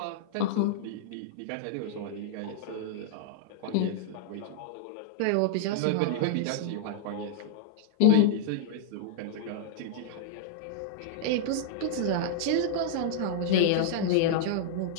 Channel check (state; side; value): different; both; correlation -0.01